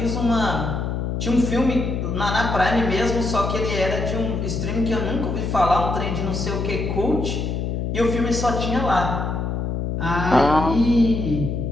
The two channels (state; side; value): noise; left; hum, 2 dB below the sound